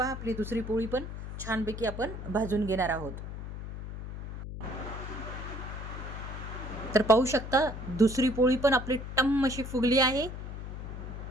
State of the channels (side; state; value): left; noise; hum, 8 dB below the sound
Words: आपली दुसरी पोळी पण छानपैकी आपण भाजून घेणार आहोत. तर पाहू शकता दुसरी पोळी पण आपली टम्म अशी फुगली आहे.